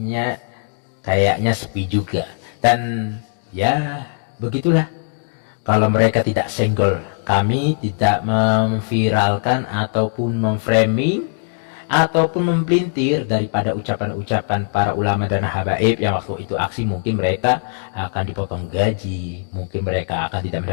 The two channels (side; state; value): right; silent; digital silence